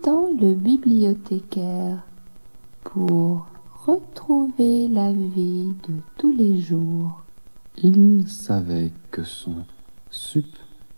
le bibliothécaire pour retrouver la vie de tous les jours, Il savait que son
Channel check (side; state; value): both; inverted; correlation -1.00